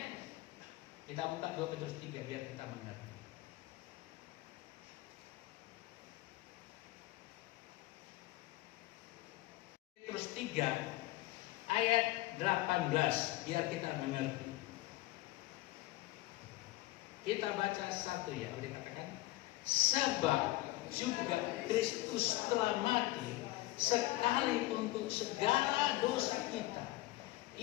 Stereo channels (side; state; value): right; quieter; 18.7 dB